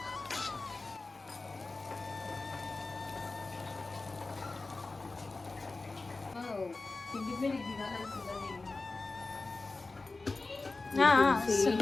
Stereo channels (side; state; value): right; quieter; 3.5 dB